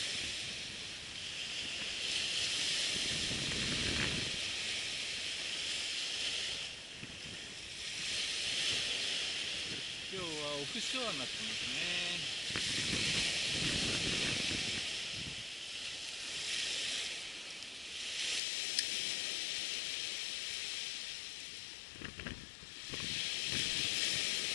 今日はオフショアになってますね。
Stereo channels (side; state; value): right; drops out; at 18.4 s